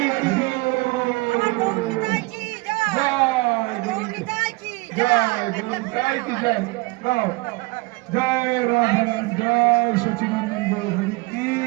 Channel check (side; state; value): left; quieter; 24.6 dB